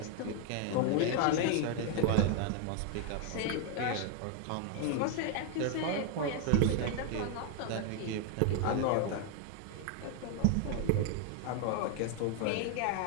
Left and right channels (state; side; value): different; both; correlation 0.00